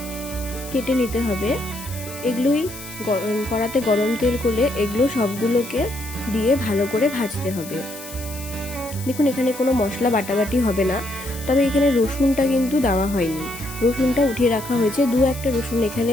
কেটে নিতে হবে। এগুলোই কড়াতে গরম তেল করলে এগুলো সবগুলোকে দিয়ে ভালো করে ভাজতে হবে। দেখুন, এখানে কোনো মশলা বাটাবাটি হবে না, তবে এখানে রসুনটা কিন্তু দেওয়া হয়নি। রসুনটা উঠিয়ে রাখা হয়েছে, দু একটা রসুন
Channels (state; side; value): noise; left; hiss, 14 dB below the sound